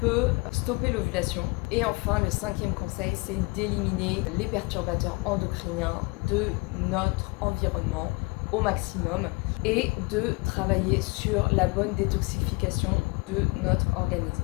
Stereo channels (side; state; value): right; quieter; 27.4 dB